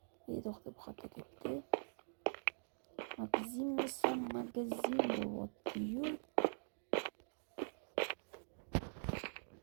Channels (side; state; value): left; silent; digital silence